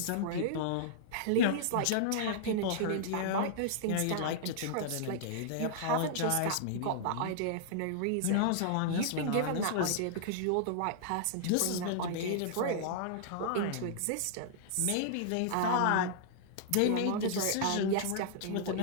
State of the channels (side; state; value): both; different; correlation -0.01